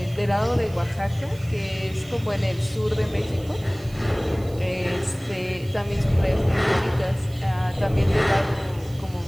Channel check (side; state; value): right; noise; hiss, 23 dB below the sound